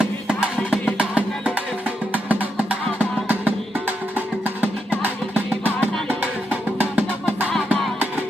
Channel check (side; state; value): both; normal; correlation 0.83